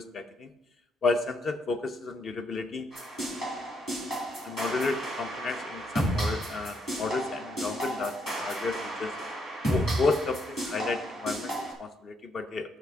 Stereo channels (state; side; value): normal; both; correlation 0.75